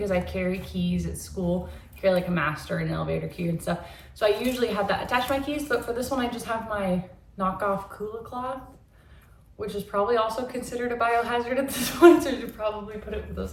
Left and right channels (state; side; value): identical; both; correlation 1.00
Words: I carry keys at school, carry like a master and an elevator key and stuff. So I usually have that attached to my keys, but for this one, I just have my knockoff Kula cloth, which is probably also considered a biohazard at this point, so you should probably put it with those